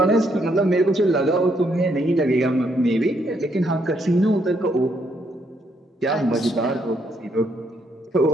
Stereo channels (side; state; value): both; normal; correlation 0.73